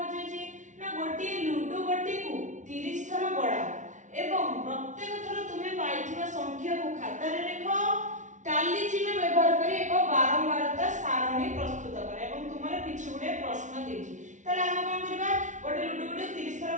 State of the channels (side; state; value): left; late; 0.36 ms